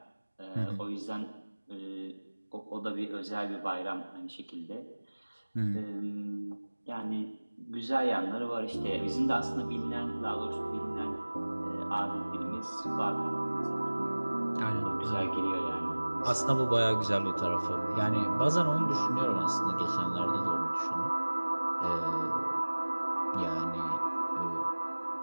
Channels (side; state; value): both; inverted; correlation -1.00